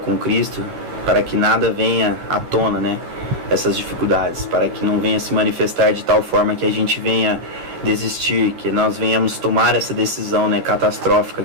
Cristo, para que nada venha à tona, né, essas dificuldades, para que não venha se manifestar de tal forma que a gente venha desistir, que nós venhamos tomar essa decisão, né, catastrófica,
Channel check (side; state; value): left; late; 12 ms